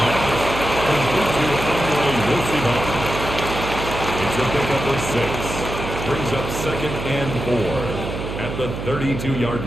To pick up a 6, brings up 2nd and 4 at the 32-yard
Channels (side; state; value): right; noise; hum, 6 dB below the sound